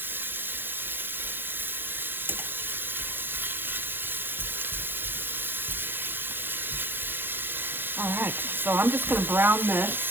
All right, so I'm just going to brown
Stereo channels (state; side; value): late; left; 0.10 ms